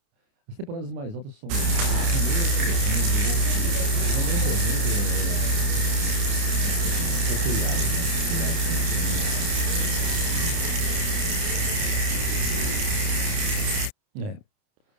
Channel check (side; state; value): left; late; 29 ms